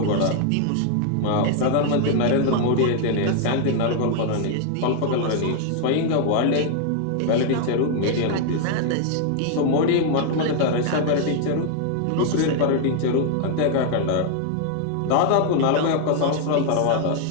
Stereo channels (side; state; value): both; different; correlation 0.00